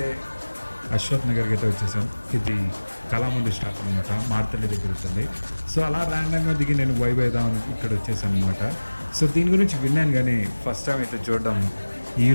అశ్వత్ నగర్కి అయితే వచ్చేసాం. ఇది కళామంది స్టాప్ అనమాట, మార్తల్లి దగ్గర ఉంటుంది. సో అలా ర్యాండమ్గా దిగి నేను వైబ్ అవుదామని ఇక్కడ వచ్చేసాను అనమాట. సో దీని గురించి విన్నాను కానీ ఫస్ట్ టైం అయితే చూడడం.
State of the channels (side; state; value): both; inverted; correlation -1.00